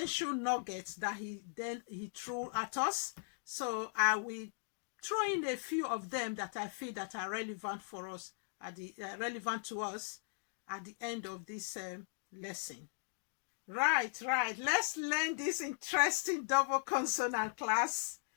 nuggets that he threw at us. So I will throw in a few of them that I feel that are relevant for us relevant to us at the end of this lesson. Right. Let's learn this interesting double consonant class.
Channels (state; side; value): silent; right; digital silence